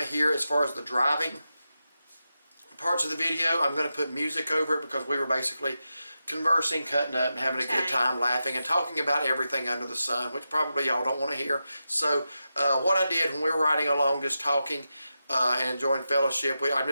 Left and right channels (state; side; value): inverted; both; correlation -0.90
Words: to hear as far as the driving parts of the video, I'm going to put music over it because we were basically conversing, cutting up, and having a good time, laughing and talking about everything under the sun, which probably y'all don't want to hear. So what I did when we were riding along, just talking and enjoying fellowship, I'm